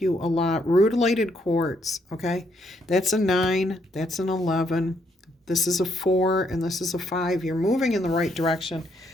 a lot. Rutilated quartz, okay? That's a 9, that's an 11. This is a 4, and this is a 5. You're moving in the right direction.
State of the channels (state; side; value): normal; both; correlation 0.73